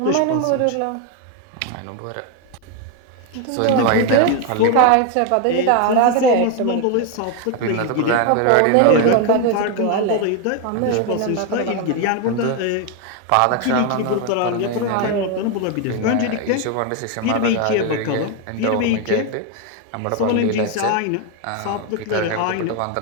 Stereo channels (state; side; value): different; both; correlation 0.01